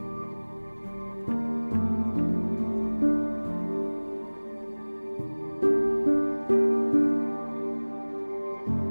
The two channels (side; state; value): both; inverted; correlation -1.00